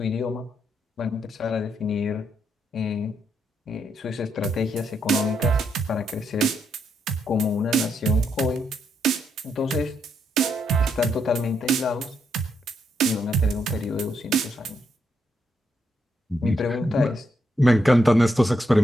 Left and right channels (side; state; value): both; normal; correlation 0.79